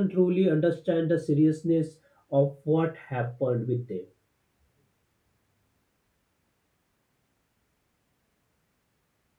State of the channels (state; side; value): identical; both; correlation 1.00